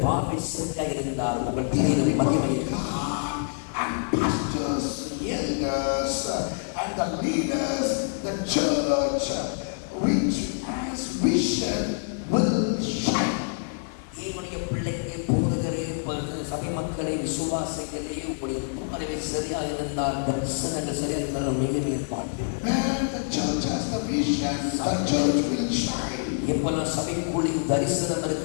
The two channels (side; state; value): right; silent; digital silence